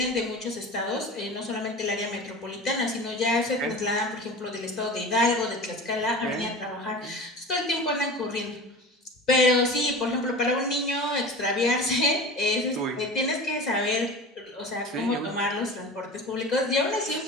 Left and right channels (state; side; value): normal; both; correlation 0.33